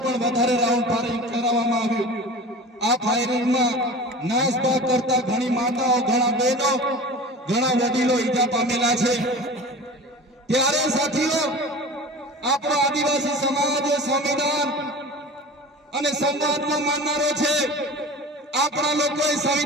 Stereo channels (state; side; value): normal; both; correlation 0.36